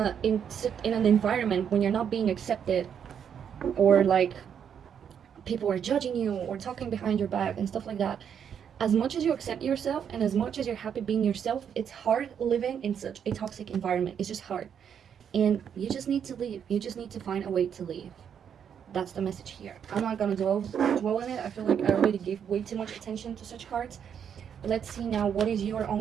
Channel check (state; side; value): quieter; left; 8.1 dB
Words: an environment, when you're not being accepted, or like people are judging you or talking behind your back and stuff like that. As much as you accept yourself and as much as you're happy being yourself, it's hard living in such a toxic environment. It's just hard. And you just need to leave. You just need to find a way to leave. That's the message here. I'm not gonna dwell on it. I feel like I already gave way too much attention to such cards. Let's see now, what is your own